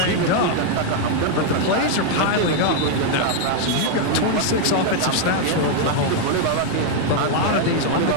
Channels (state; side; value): different; both; correlation 0.00